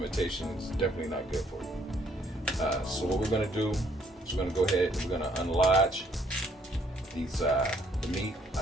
is definitely not good for you. So what we're gonna do is we're gonna go ahead and we're gonna unlodge these the meat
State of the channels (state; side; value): normal; both; correlation 0.66